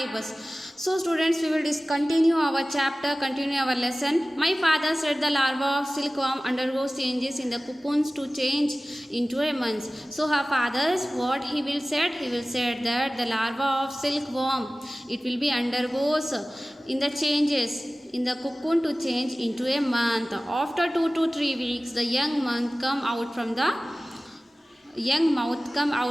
So students, we will continue our chapter, continue our lesson. My father said the larva of silkworm undergoes changes in the cocoons to change into a month. So her father's what he will say that the larva of silkworm, it will be undergoes in the changes in the cocoon to change into a month. After 2 to 3 weeks, the young mouth come out from the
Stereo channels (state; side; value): normal; both; correlation 0.97